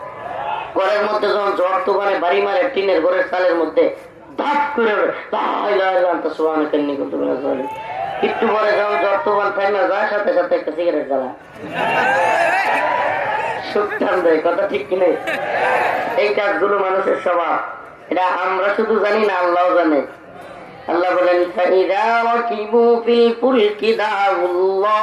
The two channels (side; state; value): both; identical; correlation 1.00